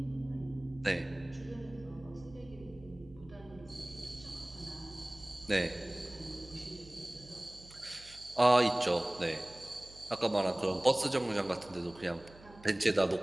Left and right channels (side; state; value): right; noise; hum, 21 dB below the sound